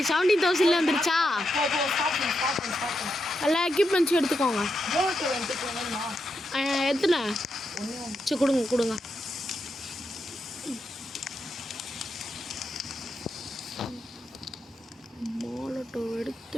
வந்துருச்சா? எல்லா எக்யூப்மெண்ட்ஸும் எடுத்துக்கோங்க. எத்தனை? சரி கொடுங்க. மாலட்டோ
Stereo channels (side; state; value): both; normal; correlation 0.84